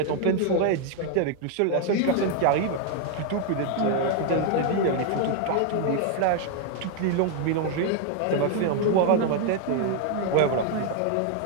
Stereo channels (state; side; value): different; both; correlation 0.00